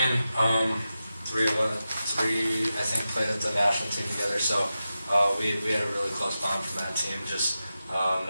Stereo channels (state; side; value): inverted; both; correlation -0.92